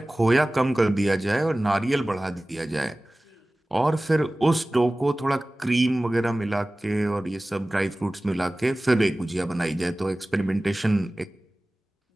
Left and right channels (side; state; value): both; normal; correlation 0.98